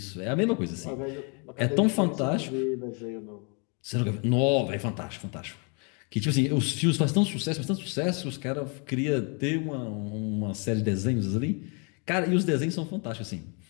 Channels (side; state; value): right; quieter; 35.4 dB